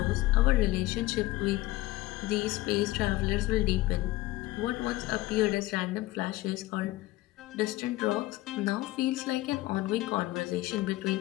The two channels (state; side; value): quieter; right; 17.9 dB